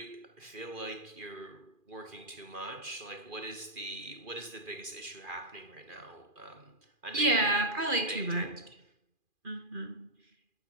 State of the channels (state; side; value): late; left; 2.4 ms